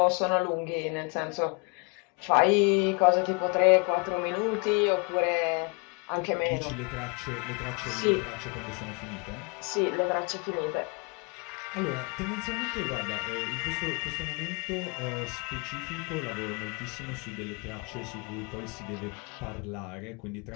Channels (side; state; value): right; quieter; 31.9 dB